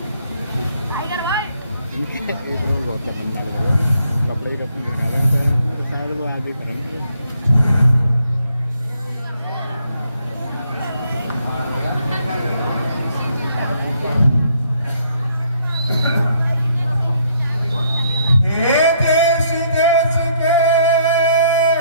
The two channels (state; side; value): inverted; both; correlation -0.69